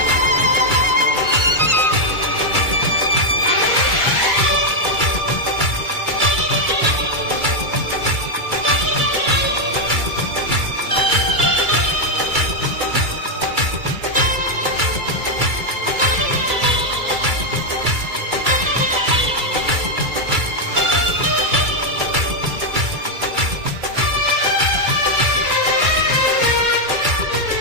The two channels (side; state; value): left; late; 2.3 ms